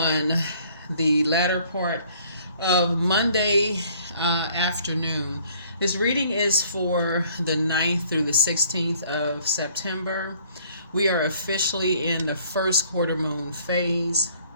the latter part of Monday afternoon. This reading is for the 9th through the 16th of September. We are officially in the first quarter moon phase.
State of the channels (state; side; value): inverted; both; correlation -0.59